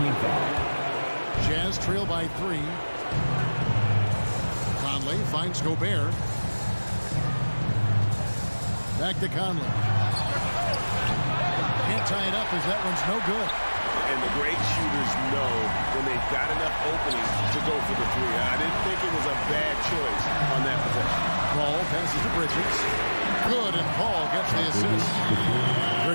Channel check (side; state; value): both; inverted; correlation -1.00